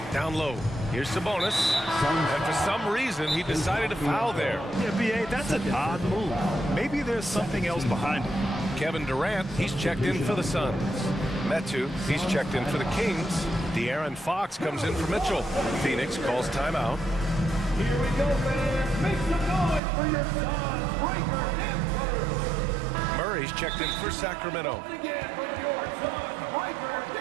Down low. Here's Sabonis. And for some reason, he decided to foul there. Yeah, B.A., that's an odd move. Maybe there's something else behind it. Kevin Durant, he's checked in for the Suns. Metu, he's checked in for the Kings. De'Aaron Fox comes in for Mitchell. Phoenix calls timeout. Here we go, fans. Make some noise for your Suns, Breaker and Huerter. Murray's checked in for Sacramento. Once again from your Suns, Breaker and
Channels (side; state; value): left; drops out; at 19.8 s